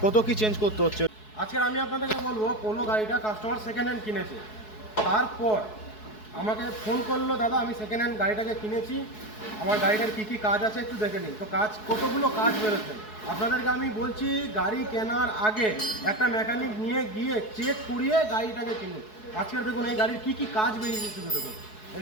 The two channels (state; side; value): late; right; 4.7 ms